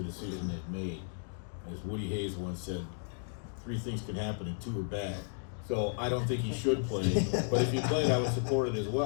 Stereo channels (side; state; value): right; silent; digital silence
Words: decision they've made. As Woody Hayes once said, 3 things can happen and 2 are bad. So I don't think he should play, but if he played, I would support it as